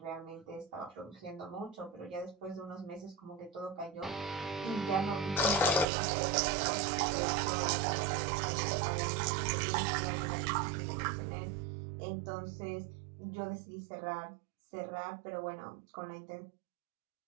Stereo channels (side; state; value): left; drops out; at 5.9 s